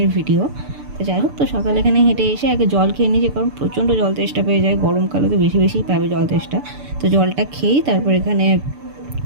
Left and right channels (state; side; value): late; left; 6.9 ms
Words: ভিডিও। তো যাই হোক, তো সকালে এখানে হেঁটে এসে আগে জল খেয়ে নিয়েছি, কারণ প্রচণ্ড জল তেষ্টা পেয়ে যায়। গরমকালে তো বেশি বেশিই পাবে জল তেষ্টা। তো জলটা খেয়েই তারপর এখানে